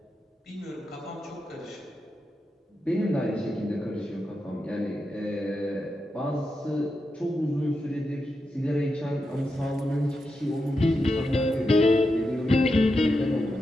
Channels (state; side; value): normal; both; correlation 0.87